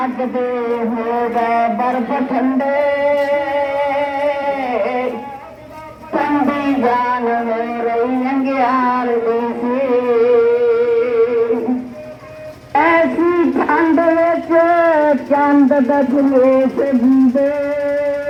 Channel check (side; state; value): both; identical; correlation 1.00